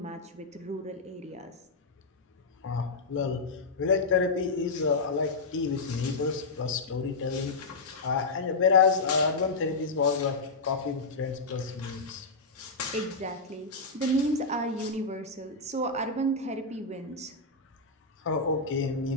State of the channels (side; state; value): right; quieter; 3.6 dB